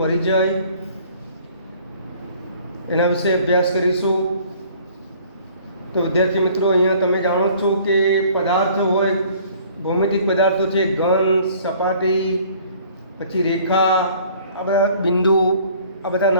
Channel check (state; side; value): inverted; both; correlation -0.55